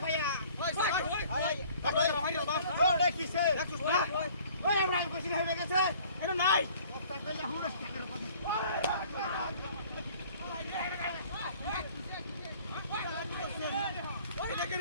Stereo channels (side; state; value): both; inverted; correlation -0.53